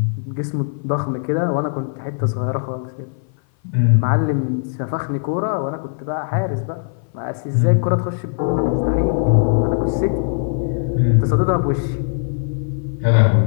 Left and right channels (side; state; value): right; silent; 58 dB below the other